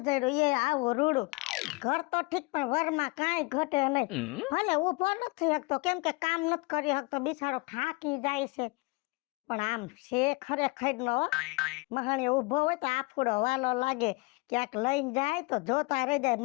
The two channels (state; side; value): quieter; right; 25.8 dB